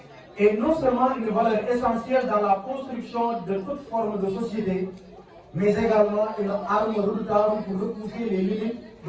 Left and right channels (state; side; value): identical; both; correlation 1.00